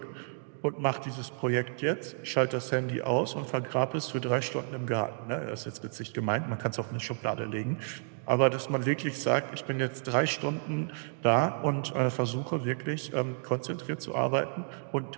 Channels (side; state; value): left; silent; 57 dB below the other